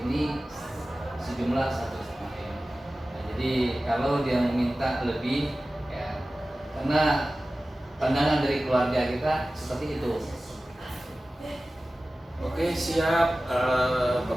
ini sejumlah 1,5 M. Nah, jadi kalau dia meminta lebih, ya karena pandangan dari keluarga kita seperti itu. Oke, siap.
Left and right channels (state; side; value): normal; both; correlation 0.96